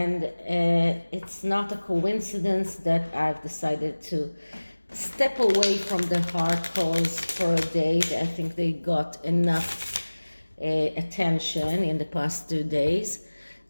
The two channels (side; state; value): both; inverted; correlation -1.00